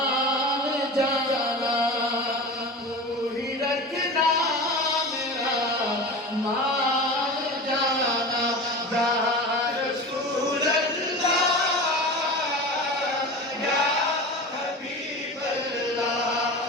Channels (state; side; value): normal; both; correlation 0.31